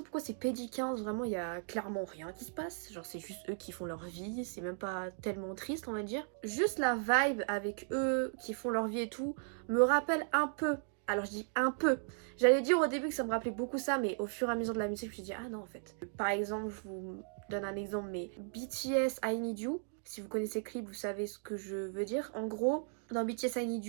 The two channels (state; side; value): silent; left; 54 dB below the other